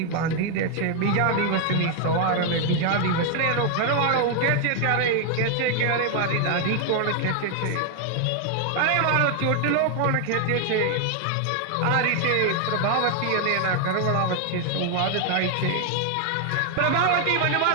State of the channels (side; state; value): both; different; correlation 0.00